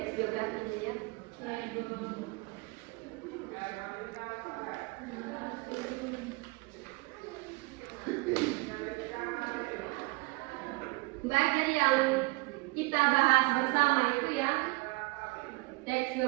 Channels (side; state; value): left; quieter; 26.4 dB